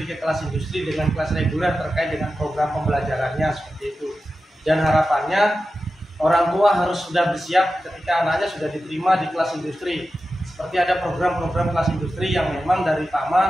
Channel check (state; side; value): normal; both; correlation 0.92